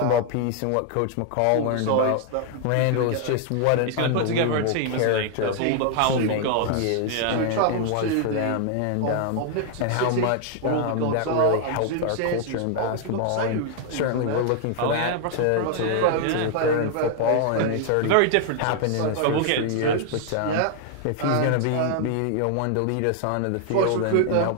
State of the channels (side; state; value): both; different; correlation 0.00